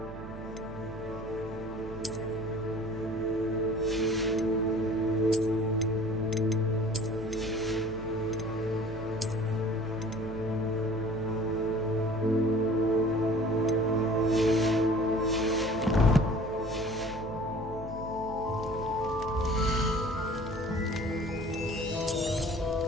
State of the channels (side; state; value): right; noise; hum, 12 dB below the sound